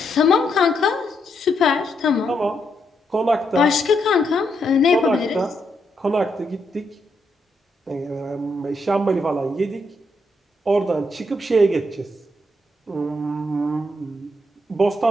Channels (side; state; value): both; normal; correlation 0.79